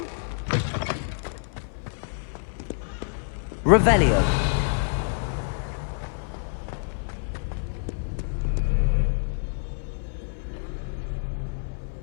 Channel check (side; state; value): right; silent; 56 dB below the other